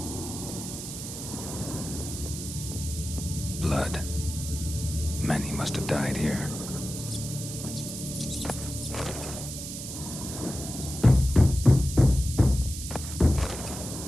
Blood. Many must have died here.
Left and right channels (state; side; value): noise; right; hiss, 8 dB below the sound